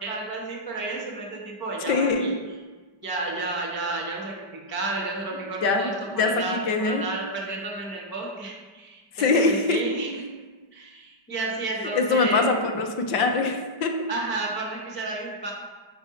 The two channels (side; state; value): right; late; 5.1 ms